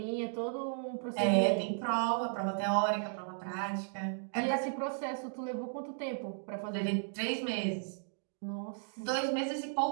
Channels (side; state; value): left; silent; digital silence